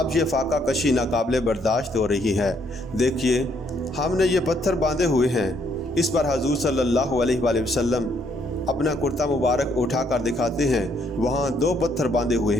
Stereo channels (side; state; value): both; normal; correlation 0.70